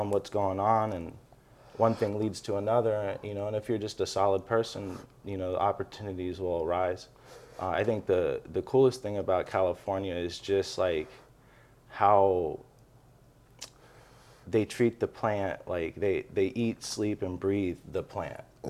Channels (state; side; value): identical; both; correlation 1.00